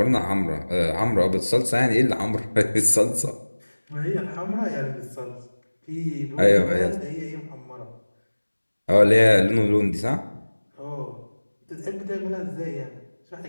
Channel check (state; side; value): inverted; both; correlation -1.00